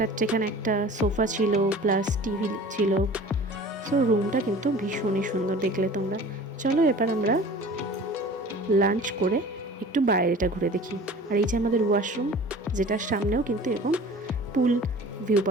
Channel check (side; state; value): both; normal; correlation 0.43